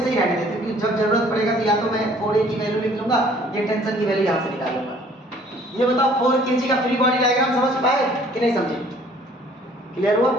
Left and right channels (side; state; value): both; normal; correlation 0.56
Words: ही रहने देते क्योंकि जब जरूरत पड़ेगा तो या तो मैं 4a की वैल्यू लिख लूंगा या टेंशन की वैल्यू यहाँ से निकाल लूंगा। ये बताओ 4 kg का फ्री बॉडी डायग्राम समझ पाए कि नहीं समझे? क्लियर हुआ?